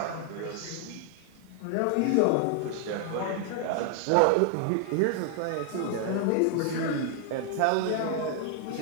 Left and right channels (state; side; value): different; both; correlation 0.00